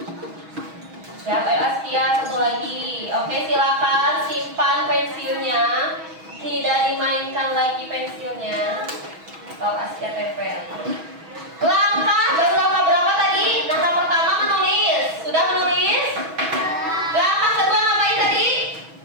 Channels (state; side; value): late; left; 6.2 ms